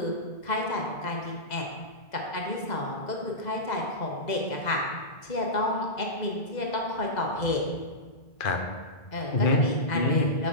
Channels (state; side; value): late; right; 2.0 ms